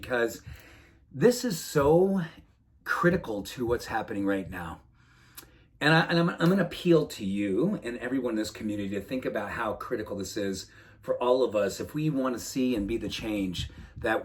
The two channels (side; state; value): both; identical; correlation 1.00